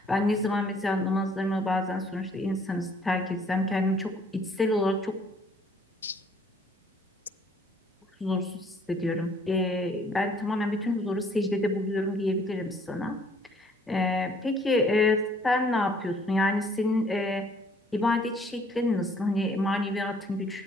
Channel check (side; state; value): both; normal; correlation 0.60